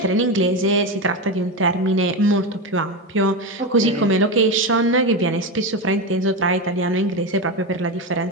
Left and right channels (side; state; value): both; normal; correlation 0.16